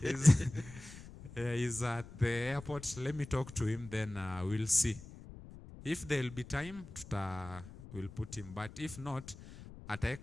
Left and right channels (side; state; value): left; noise; rumble, 16 dB below the sound